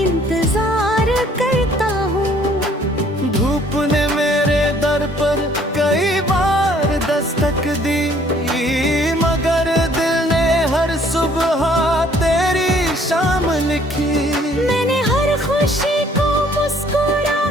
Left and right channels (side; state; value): both; normal; correlation 0.60